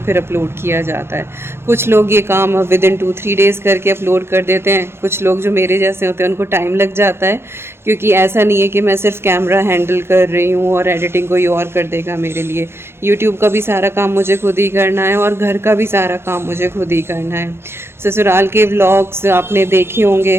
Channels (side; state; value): left; late; 0.12 ms